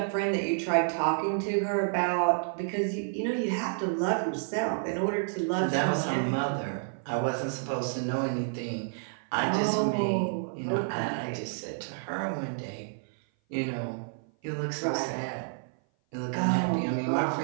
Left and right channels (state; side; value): silent; left; 56 dB below the other